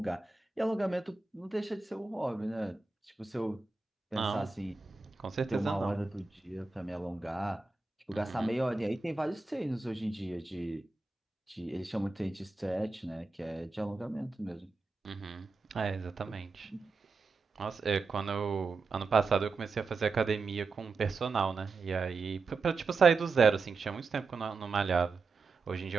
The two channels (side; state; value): left; quieter; 4.1 dB